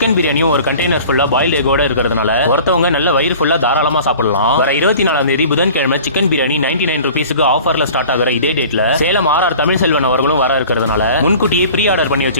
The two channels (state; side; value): inverted; both; correlation -0.44